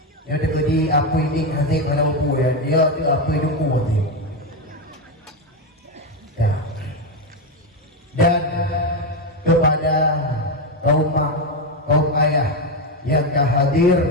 Yang ada di apa ini hasil mana lupu ya. Dia tu apa lupu teh. Ya. Dan kepada kaum ayah yang hadir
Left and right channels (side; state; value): both; normal; correlation 0.10